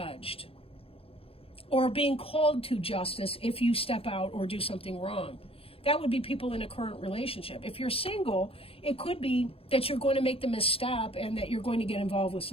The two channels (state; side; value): late; right; 0.27 ms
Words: or being called to justice if you step out or do something wrong. That would be people in a current relationship. If you're single, it could be that you're going to make the misstep and that you're going to get involved with